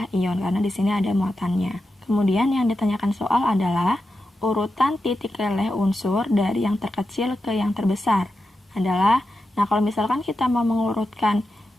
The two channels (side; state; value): both; normal; correlation 0.89